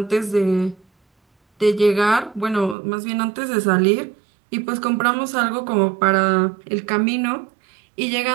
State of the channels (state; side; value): drops out; left; at 2.8 s